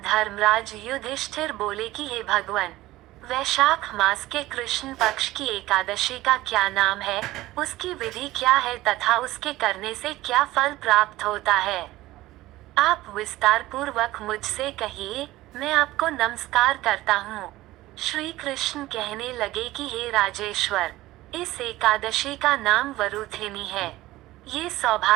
धर्मराज युधिष्ठिर बोले कि हे भगवान, वैशाख मास के कृष्ण पक्ष की एकादशी का क्या नाम है, उसकी विधि क्या है तथा उसके करने से क्या फल प्राप्त होता है। आप विस्तार पूर्वक मुझसे कहिए, मैं आपको नमस्कार करता हूँ। श्री कृष्ण कहने लगे कि हे राजेश्वर, इस एकादशी का नाम वरुथिनी है। ये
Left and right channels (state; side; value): quieter; left; 17.2 dB